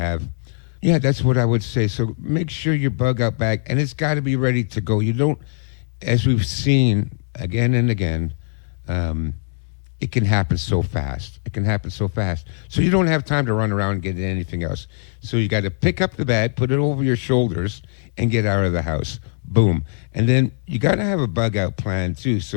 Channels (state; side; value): silent; right; digital silence